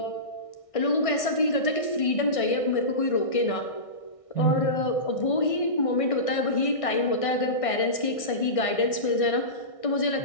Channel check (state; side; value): late; right; 1.6 ms